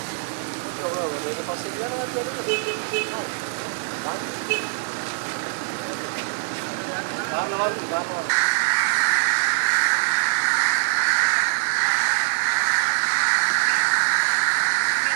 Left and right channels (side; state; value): left; silent; 63 dB below the other